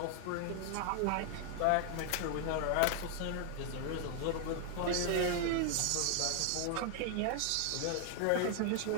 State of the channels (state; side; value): different; both; correlation 0.00